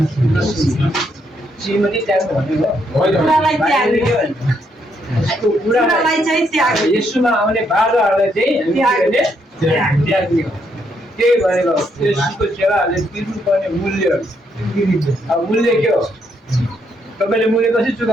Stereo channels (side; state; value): both; normal; correlation 0.75